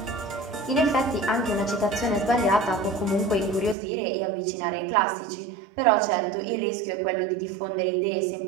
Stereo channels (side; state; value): left; drops out; at 3.8 s